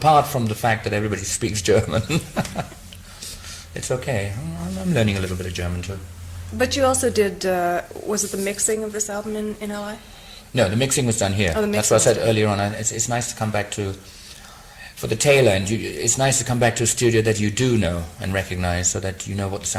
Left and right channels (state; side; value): identical; both; correlation 1.00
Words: from the fact that everybody speaks German. It's okay. I'm learning a little bit of German too. But you also did, was it the mixing of this album in LA? No, the mixing was done here. Oh, that's what I said earlier on. It's nice to come back to, for the tail end, it's nice to come back to a studio that you do know and recognize, so that you know what the